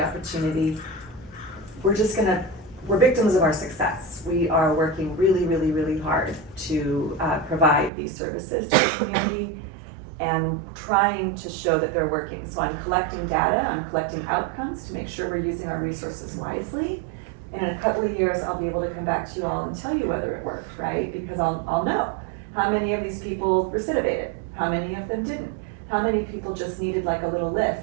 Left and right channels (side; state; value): left; drops out; at 7.9 s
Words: opportunity. We're victims of our success. We are working really, really, really hard to provide these services to the community and trying to show that they're working. So I'm collecting data, I'm collecting outcomes to make sure we're using our resources wisely. And in a couple of years, I'll be able to come back to you all and tell you whether it worked, right? Because I'll know how many of these people recidivated, how many of them didn't, how many people just needed like a little